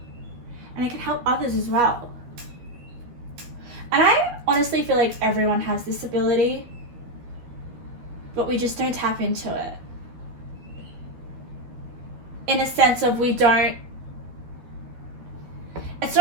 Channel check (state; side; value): late; left; 12 ms